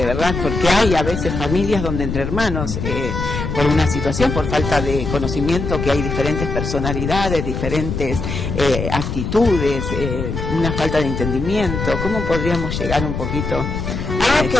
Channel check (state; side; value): noise; left; rumble, 4 dB below the sound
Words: verdad? Porque hay a veces familias donde entre hermanos, por una situación, por falta de conocimiento, que hay diferentes personalidades, diferentes actitudes, una falta de entendimiento. ¿Cómo podríamos llegar un poquito algo